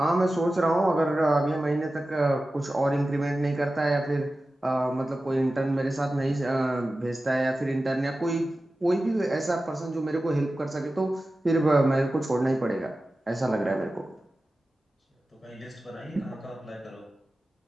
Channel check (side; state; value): both; normal; correlation 0.95